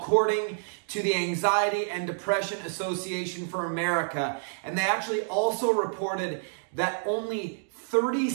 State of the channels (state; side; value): silent; left; digital silence